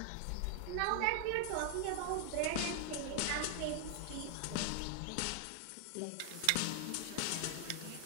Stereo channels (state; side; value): different; both; correlation 0.00